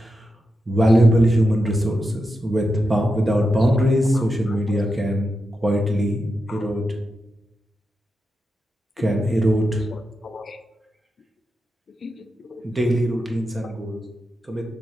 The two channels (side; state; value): both; normal; correlation 0.88